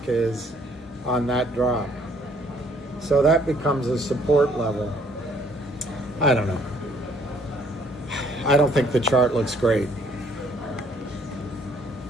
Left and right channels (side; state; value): both; normal; correlation 0.63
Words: is on that drop. So that becomes a support level. I don't know. I don't think the chart looks great.